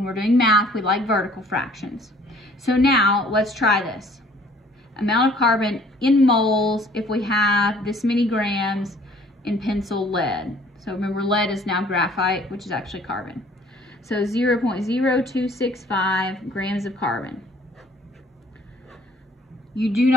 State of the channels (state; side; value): normal; both; correlation 0.56